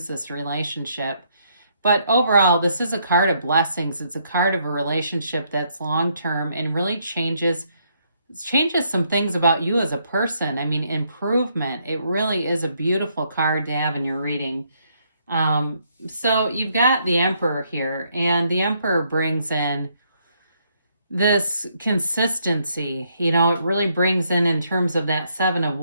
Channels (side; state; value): both; inverted; correlation -0.73